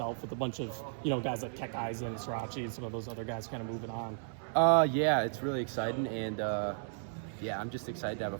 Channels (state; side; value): silent; left; 55 dB below the other